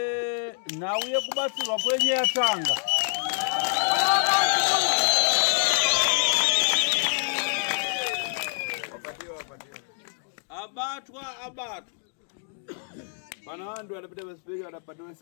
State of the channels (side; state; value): right; silent; digital silence